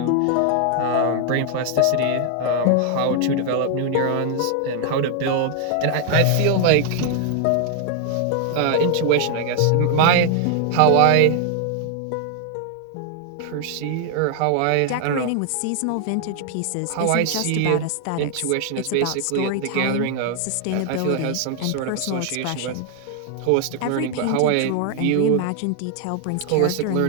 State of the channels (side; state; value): both; different; correlation 0.00